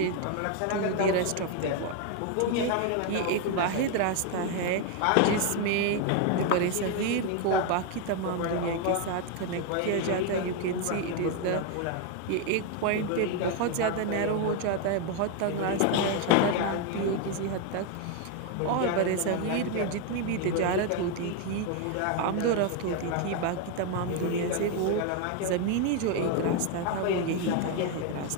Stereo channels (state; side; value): different; both; correlation 0.01